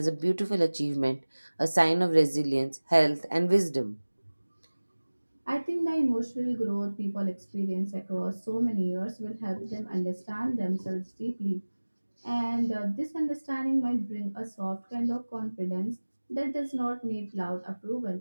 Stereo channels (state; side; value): inverted; both; correlation -1.00